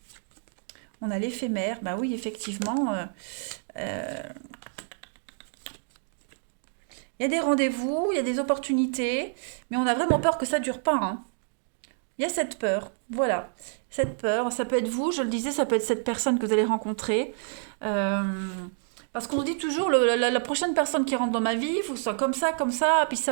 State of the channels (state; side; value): silent; left; digital silence